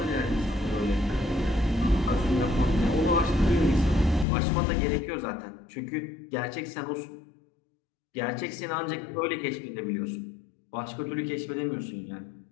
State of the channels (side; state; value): right; drops out; at 4.2 s